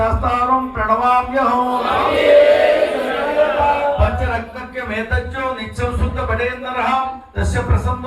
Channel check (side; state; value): both; identical; correlation 1.00